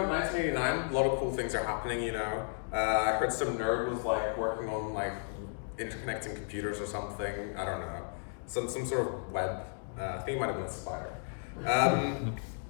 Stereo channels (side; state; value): right; silent; digital silence